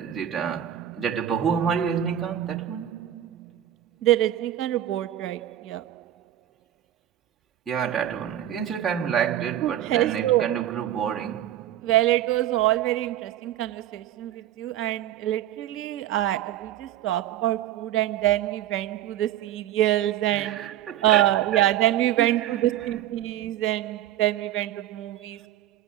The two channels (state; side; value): quieter; left; 11.9 dB